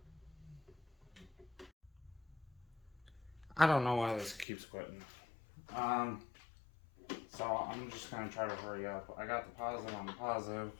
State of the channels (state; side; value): drops out; right; at 4.5 s